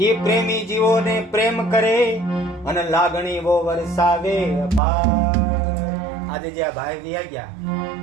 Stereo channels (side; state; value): left; drops out; at 4.8 s